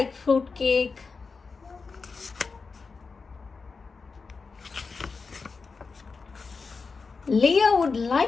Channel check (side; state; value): right; quieter; 4.6 dB